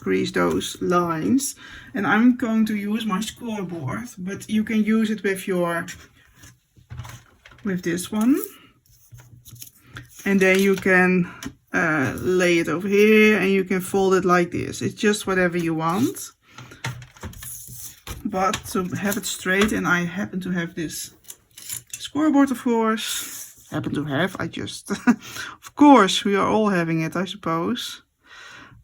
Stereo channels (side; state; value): both; identical; correlation 1.00